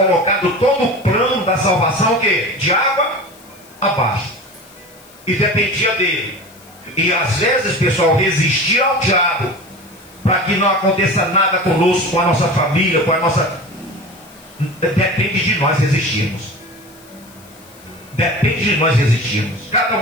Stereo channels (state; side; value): noise; left; hiss, 25 dB below the sound